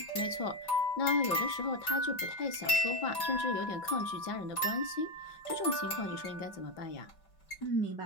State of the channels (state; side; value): late; right; 5.3 ms